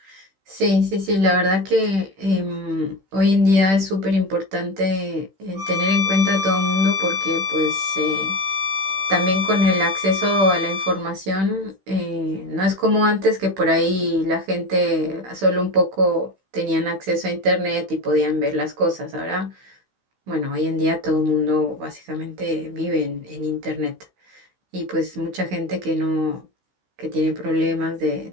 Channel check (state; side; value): late; left; 15 ms